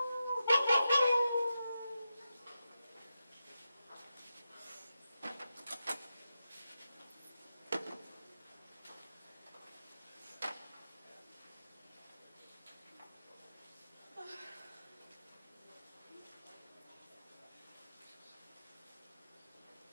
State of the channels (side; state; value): both; inverted; correlation -0.90